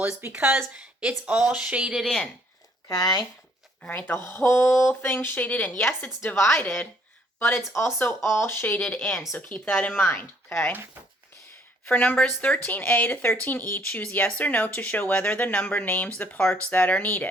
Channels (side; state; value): both; normal; correlation 0.64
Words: is because it's all shaded in. Okay. All right, the whole thing shaded in. Yes, it's divided, but it's also all shaded in. So keep that in mind. Okay. For numbers 13A to 13E, choose yes or no to show whether the number names the parts that are